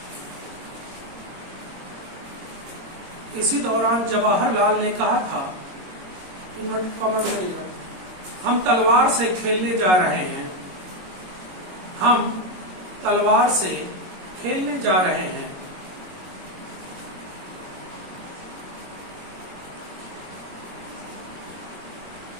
इसी दौरान जवाहरलाल ने कहा था, हम तलवार से खेलने जा रहे हैं। हम तलवार से खेलने जा रहे हैं।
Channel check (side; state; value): left; late; 22 ms